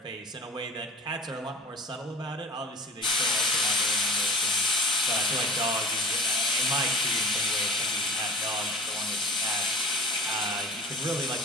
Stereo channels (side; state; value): both; normal; correlation 0.39